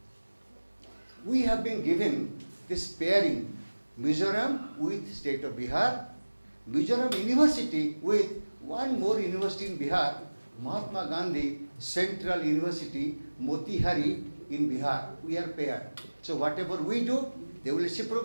we have been given this pairing, Mizoram with state of Bihar, Mizoram University with one more university in Bihar, Mahatma Gandhi Central University, Motihari in Bihar. We are paired. So whatever we do, they will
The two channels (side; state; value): both; inverted; correlation -1.00